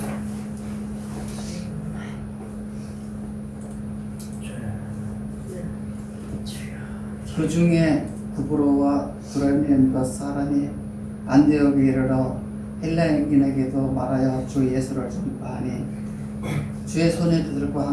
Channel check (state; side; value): identical; both; correlation 1.00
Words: 그 중에 구브로와 브레멘과 사람이 안디옥에 이르러 헬라인에게도 말하여 주 예수를 전파하니 주의 손이 그들과